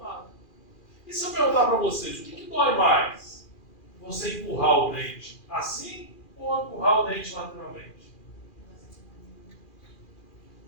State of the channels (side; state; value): right; late; 2.4 ms